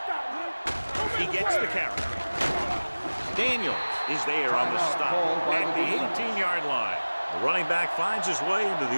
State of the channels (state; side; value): inverted; both; correlation -1.00